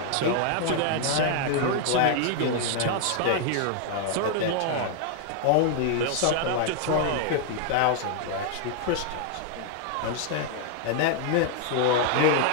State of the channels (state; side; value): different; both; correlation 0.00